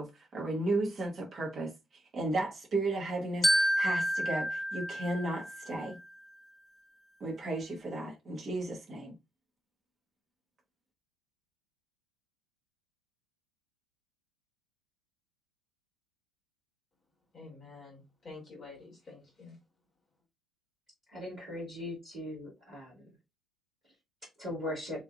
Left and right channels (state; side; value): normal; both; correlation 0.85